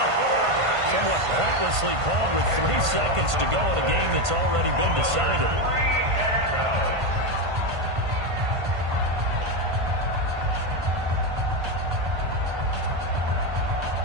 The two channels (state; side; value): late; left; 1.5 ms